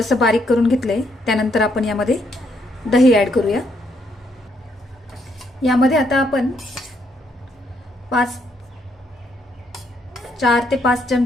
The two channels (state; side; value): normal; both; correlation 0.73